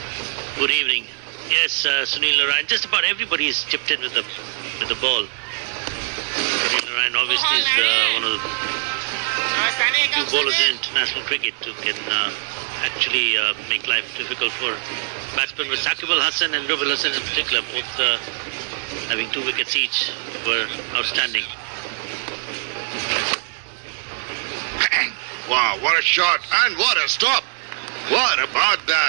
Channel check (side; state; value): left; silent; digital silence